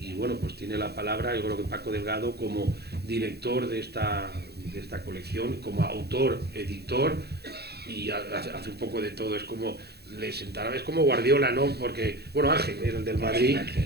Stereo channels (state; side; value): late; left; 0.47 ms